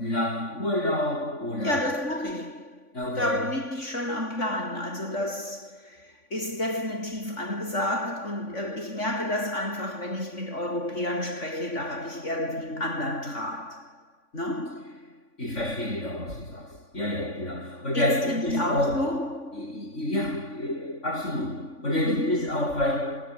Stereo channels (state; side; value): late; right; 3.5 ms